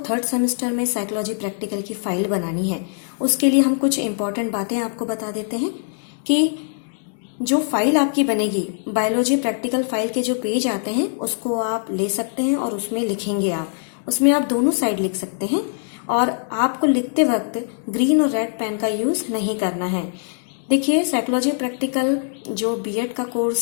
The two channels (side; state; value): right; silent; digital silence